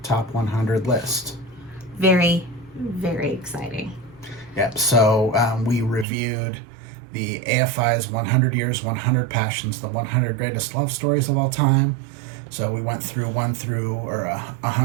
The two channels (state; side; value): drops out; left; at 6.1 s